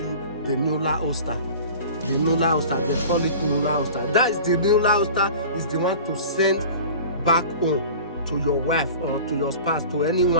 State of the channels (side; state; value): both; inverted; correlation -0.40